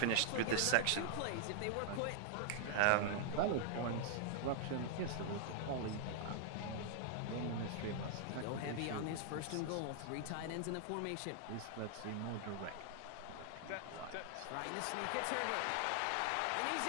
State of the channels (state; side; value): different; both; correlation 0.00